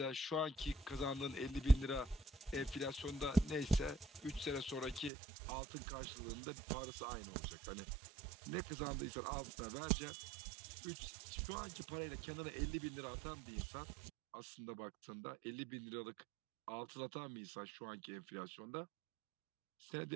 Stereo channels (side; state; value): left; drops out; at 5.1 s